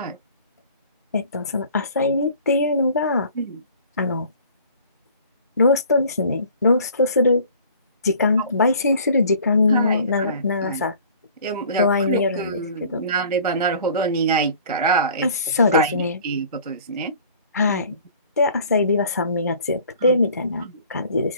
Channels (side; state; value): both; inverted; correlation -0.50